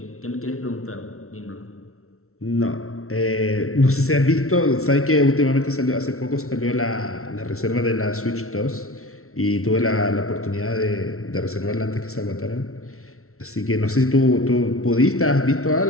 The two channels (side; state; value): right; late; 0.63 ms